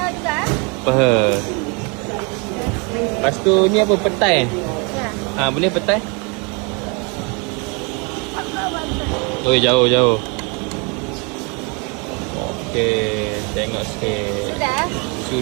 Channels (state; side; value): quieter; left; 32.3 dB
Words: juga? Peha. Lepas tu ni apa petai? Ya. Boleh petai? Oh jauh. Okey, tengok sikit.